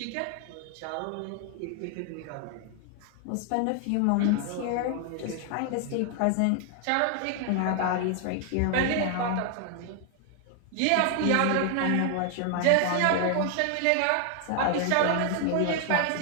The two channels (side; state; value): both; different; correlation 0.00